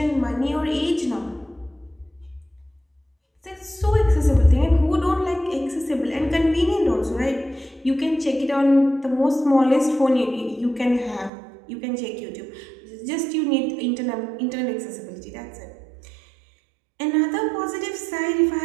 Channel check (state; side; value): drops out; left; at 11.3 s